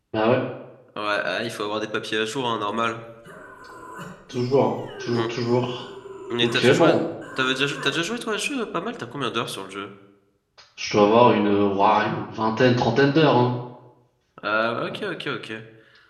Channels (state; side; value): identical; both; correlation 1.00